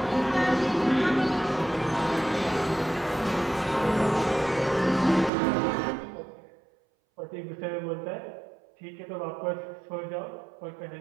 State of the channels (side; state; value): left; drops out; at 5.3 s